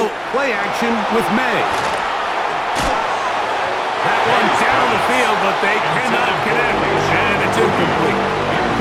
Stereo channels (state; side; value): identical; both; correlation 1.00